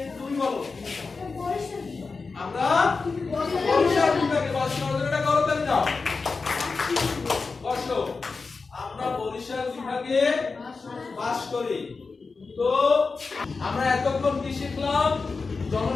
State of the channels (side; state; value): right; quieter; 4.4 dB